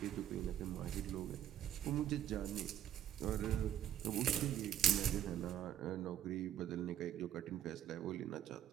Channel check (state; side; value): quieter; left; 11.0 dB